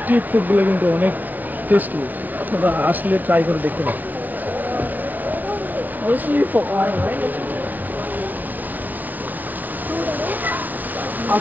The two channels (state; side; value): late; left; 0.087 ms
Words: ফুডগুলো কিন্তু অনেক টেস্টি। আপনারা আসলে ট্রাই করে দেখতে পারেন। আর